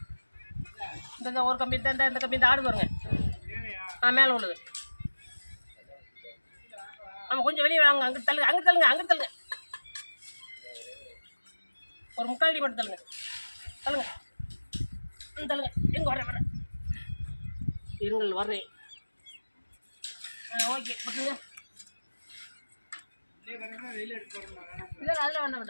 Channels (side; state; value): both; inverted; correlation -1.00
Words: இந்த ஒரு கம்பி இந்த கம்பி இந்த ஆடு பாருங்க. மேலே உள்ளது. ஆமாம் கொஞ்சம் வெளியே வாங்க. அங்கிட்டு தள்ளுங்க அங்கிட்டு தள்ளுங்க அங்கிட்டு தள்ளுங்க. ஒரு முக்கால் அடி மட்டும் தள்ளுங்க. தள்ளுங்க தள்ளுங்க. எங்கே வரேன் இருங்கள் வர்றேன். ஓகே பட்டுங்க. இல்லை அதில் வேண்டாம்